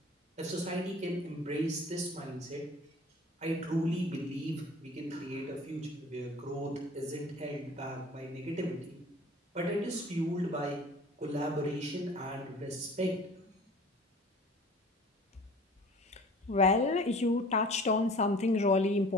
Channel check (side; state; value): both; normal; correlation 0.46